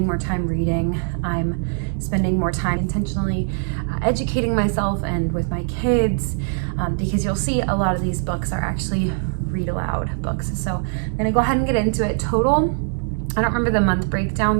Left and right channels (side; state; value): left; silent; 64 dB below the other